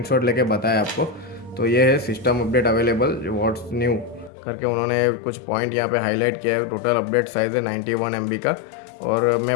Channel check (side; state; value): right; drops out; at 4.3 s